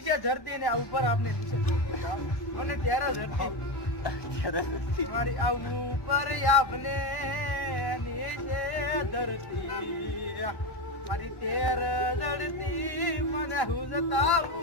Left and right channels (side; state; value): right; late; 1.1 ms